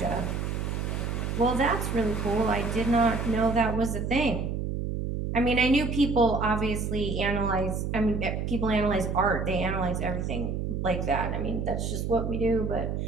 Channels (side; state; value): right; noise; hum, 2 dB below the sound